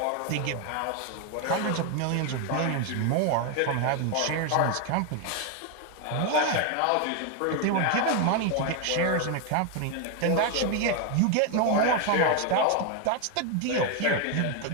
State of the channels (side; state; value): both; different; correlation 0.01